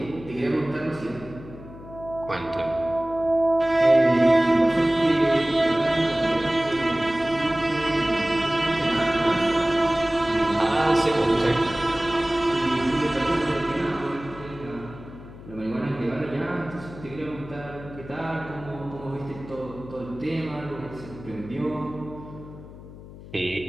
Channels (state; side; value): noise; left; hum, 16 dB below the sound